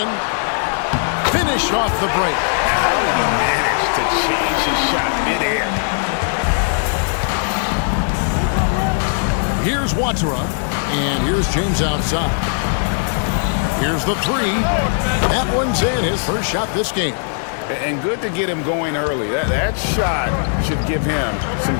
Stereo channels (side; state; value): right; silent; digital silence